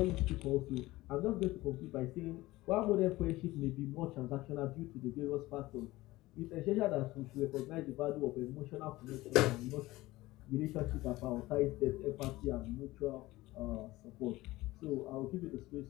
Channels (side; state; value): right; quieter; 18.6 dB